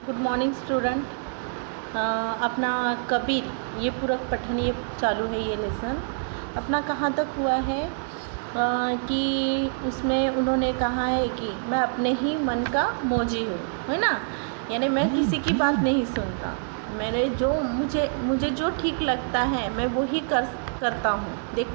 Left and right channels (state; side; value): silent; left; 61 dB below the other